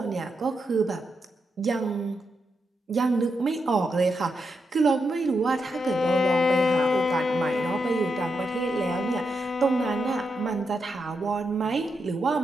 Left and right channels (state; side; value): normal; both; correlation 0.84